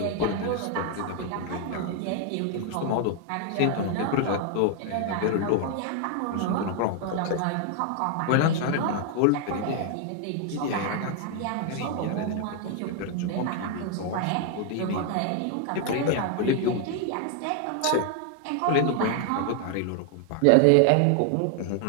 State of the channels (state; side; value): different; both; correlation 0.00